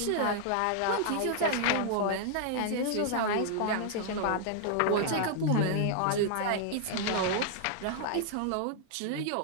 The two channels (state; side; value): different; both; correlation -0.01